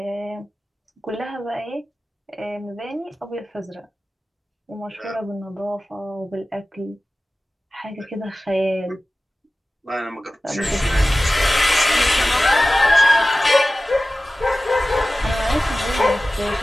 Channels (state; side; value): normal; both; correlation 0.96